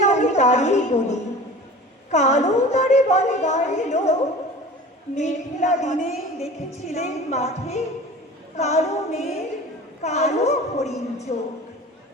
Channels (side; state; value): both; normal; correlation 0.39